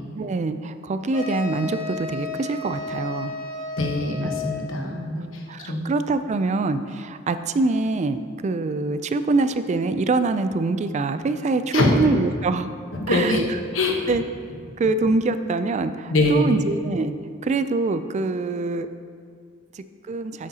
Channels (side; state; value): both; normal; correlation 0.51